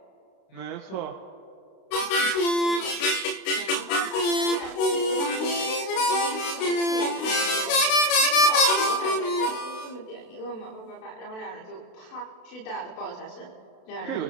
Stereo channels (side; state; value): right; late; 32 ms